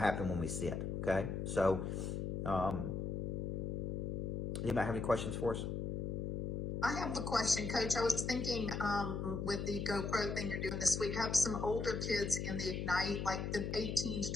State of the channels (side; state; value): left; noise; hum, 2 dB below the sound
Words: when we sit. Okay. So, anybody have any questions for us? I have a question, Coach. I was thinking with the GoPro thing you're doing this week, have some older kids in the Ignite, like the 18 to